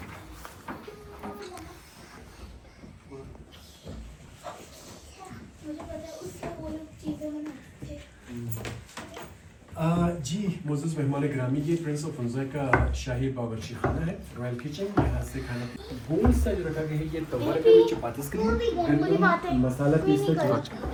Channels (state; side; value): identical; both; correlation 1.00